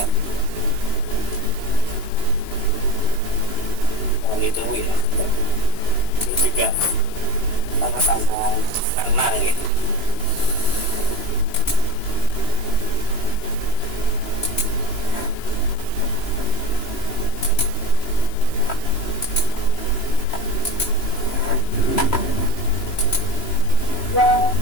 Yang itu ya, ini juga sama-sama tenang gitu.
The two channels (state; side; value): late; right; 2.9 ms